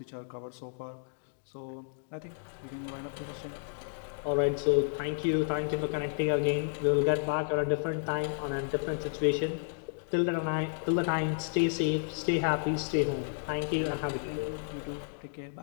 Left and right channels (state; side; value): silent; right; digital silence